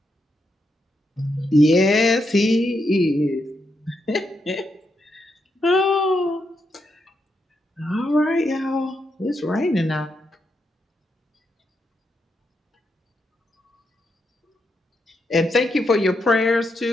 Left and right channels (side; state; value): both; normal; correlation 0.82